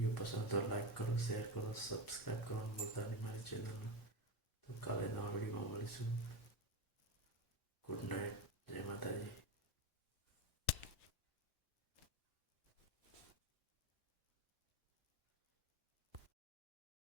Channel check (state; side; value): normal; both; correlation 0.19